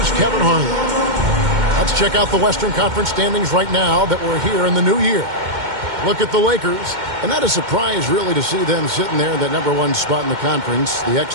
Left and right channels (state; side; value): late; left; 2.1 ms